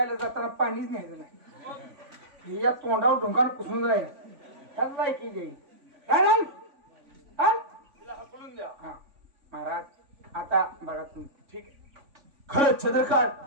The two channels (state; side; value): late; left; 3.5 ms